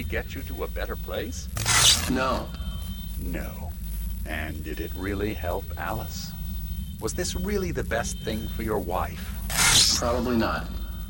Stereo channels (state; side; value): identical; both; correlation 1.00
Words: get you to a better place? No. No. And did it really help Alice? Was this really the best thing for your wife? Probably not.